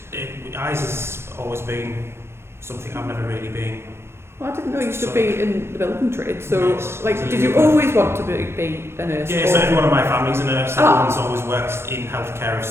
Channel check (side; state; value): left; late; 0.12 ms